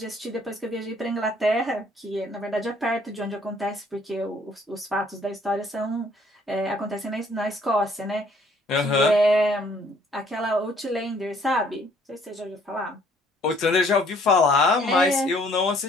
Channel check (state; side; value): normal; both; correlation 0.61